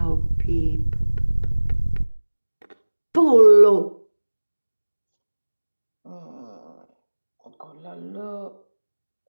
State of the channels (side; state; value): both; inverted; correlation -1.00